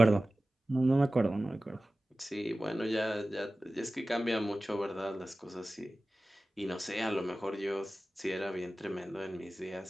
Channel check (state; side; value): normal; both; correlation 0.96